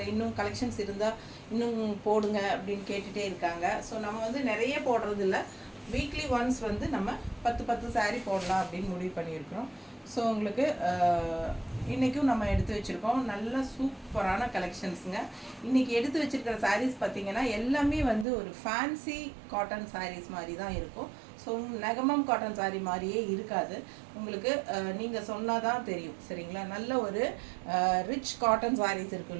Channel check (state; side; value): drops out; left; at 18.2 s